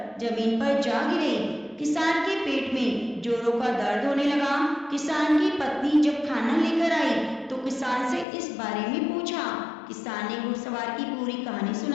जमीन पर जा गिरे। किसान के पेट में जोरों का दर्द होने लगा। किसान की पत्नी जब खाना लेकर आई तो किसान से इस बारे में पूछा। किसान ने घुड़सवार की पूरी कहानी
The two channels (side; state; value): right; drops out; at 8.2 s